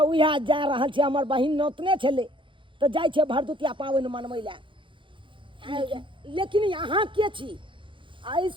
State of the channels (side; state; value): left; late; 0.24 ms